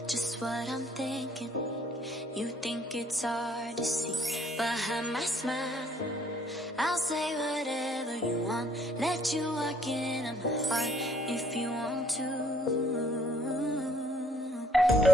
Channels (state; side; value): normal; both; correlation 0.64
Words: just what I'm thinking. You think it's hard to see behind my smile. I'll say whatever you want, let you walk into my heart if you want to.